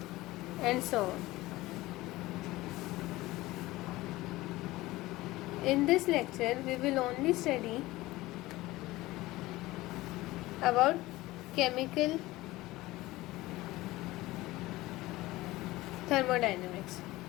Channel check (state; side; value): quieter; right; 18.6 dB